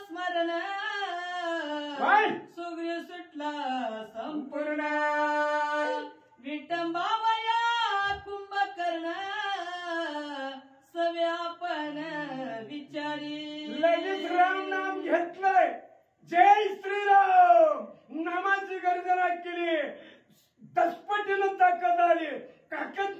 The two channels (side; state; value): both; identical; correlation 1.00